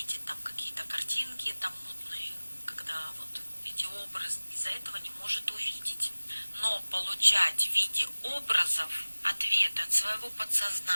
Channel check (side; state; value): both; inverted; correlation -1.00